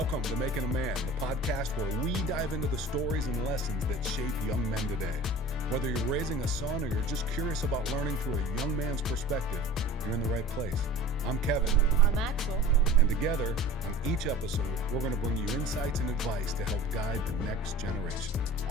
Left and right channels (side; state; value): both; normal; correlation 0.40